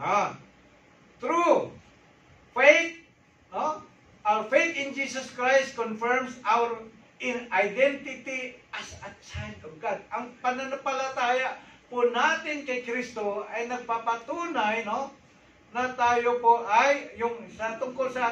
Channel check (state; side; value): identical; both; correlation 1.00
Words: Through faith, no? Our faith in Jesus Christ confirms our identity as a child of God. Ang pananampalataya po natin kay Kristo ay nagpapatunay, no, na tayo po ay tungkol